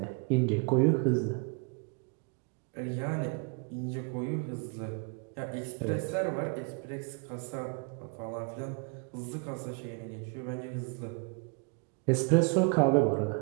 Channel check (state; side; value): quieter; left; 33.5 dB